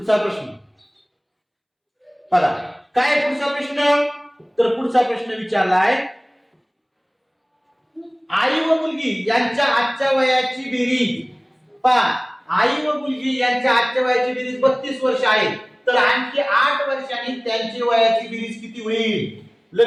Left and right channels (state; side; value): identical; both; correlation 1.00